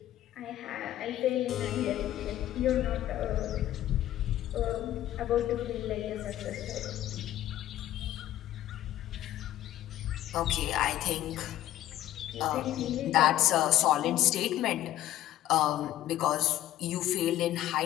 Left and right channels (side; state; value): right; quieter; 13.4 dB